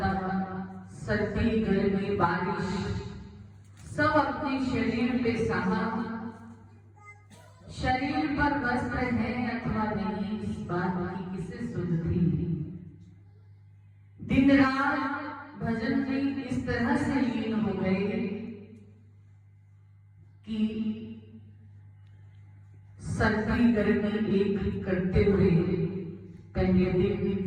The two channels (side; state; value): both; identical; correlation 1.00